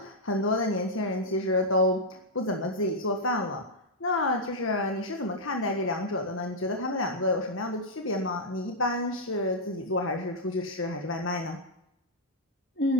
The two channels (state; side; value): normal; both; correlation -0.06